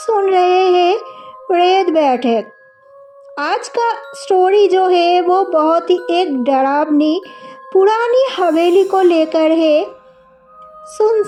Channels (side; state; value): both; identical; correlation 1.00